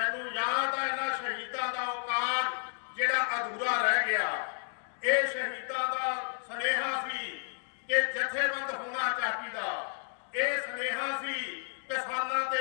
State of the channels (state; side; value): silent; right; digital silence